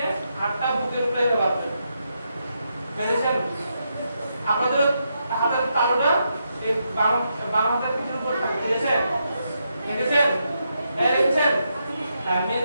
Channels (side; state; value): both; inverted; correlation -0.82